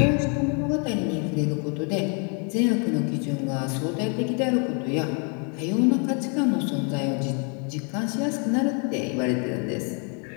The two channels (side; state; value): right; quieter; 37.8 dB